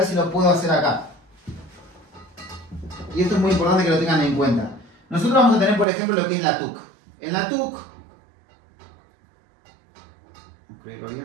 si lo puedo hacer acá. Y esto es muy importante que lo tengan en cuenta. Nosotros vamos a tener, por ejemplo, lo que es la TUC. En la TUC,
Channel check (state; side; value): drops out; left; at 5.9 s